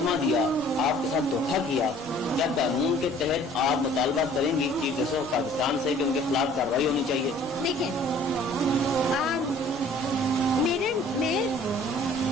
दिया, आपके साथ धोखा किया, क्या कानून के तहत आप मुतालबा करेंगी चीफ जस्टिस ऑफ पाकिस्तान से कि उनके खिलाफ कार्रवाई होनी चाहिए? देखिए, मेरे में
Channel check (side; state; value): both; normal; correlation 0.53